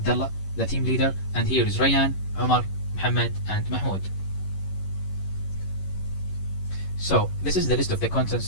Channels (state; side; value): late; right; 11 ms